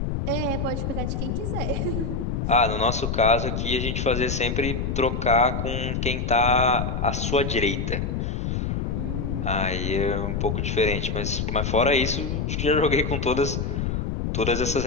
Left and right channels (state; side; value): noise; left; rumble, 1 dB below the sound